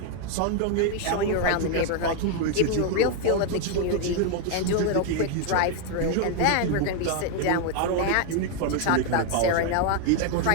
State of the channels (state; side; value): different; both; correlation 0.01